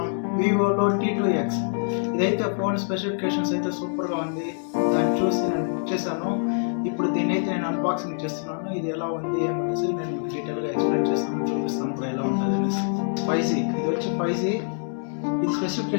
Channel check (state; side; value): silent; right; 60 dB below the other